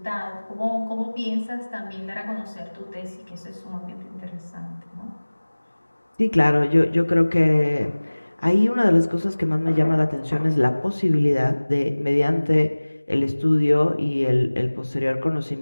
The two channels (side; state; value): both; inverted; correlation -1.00